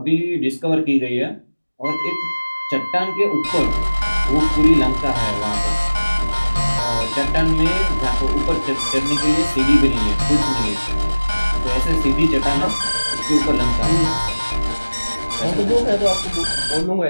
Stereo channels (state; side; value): inverted; both; correlation -1.00